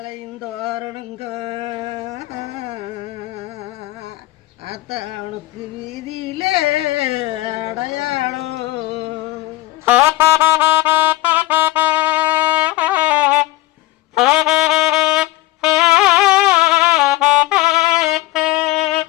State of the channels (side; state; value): right; quieter; 18.1 dB